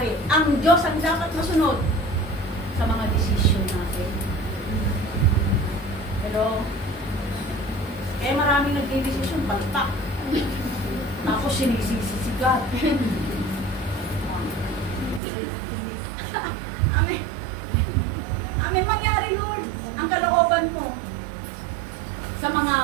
ang Diyos ang dapat masunod sa mga desisyon natin? Pero, kaya maraming nagdidesisyon, baltak. Tapos sinisisi si God. Amen. Amen. Mangyari, Lord, ang kalooban mo sa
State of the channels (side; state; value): left; drops out; at 15.2 s